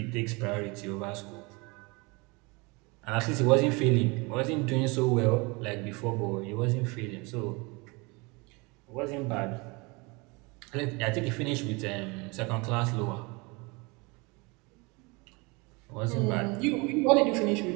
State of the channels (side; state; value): left; quieter; 27.3 dB